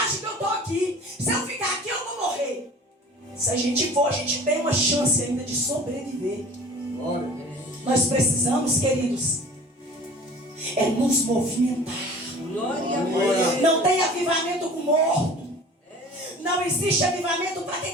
que eu estou aqui. Se eu ficar aqui, eu vou morrer. Se a gente for, a gente tem uma chance ainda de sobreviver. Nós precisamos, queridos, é nos movimentar. Não tem avivamento com morto. Não existe avivamento para quem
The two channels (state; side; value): normal; both; correlation 0.44